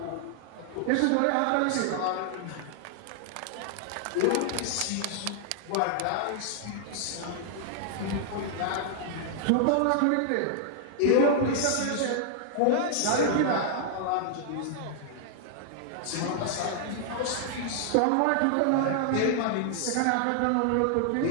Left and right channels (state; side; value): different; both; correlation 0.00